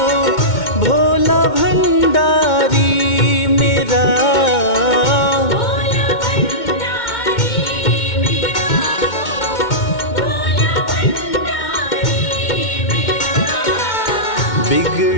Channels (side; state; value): right; late; 2.1 ms